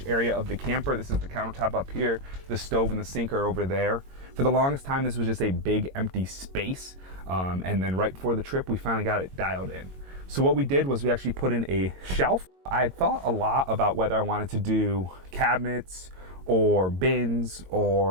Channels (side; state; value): left; late; 22 ms